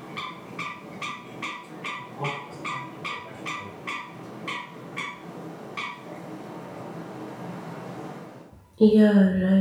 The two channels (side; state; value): both; identical; correlation 1.00